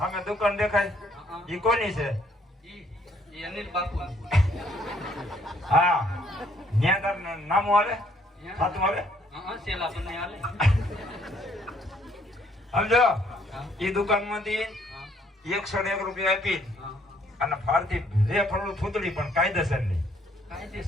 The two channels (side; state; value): both; normal; correlation 0.66